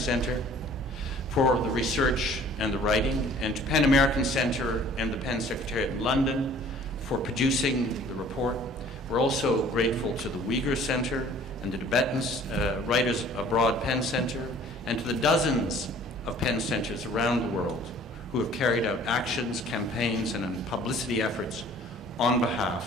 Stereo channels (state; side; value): normal; both; correlation 0.52